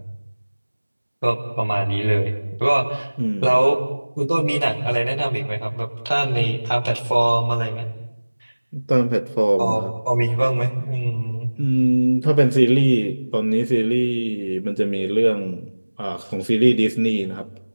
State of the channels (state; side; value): inverted; both; correlation -1.00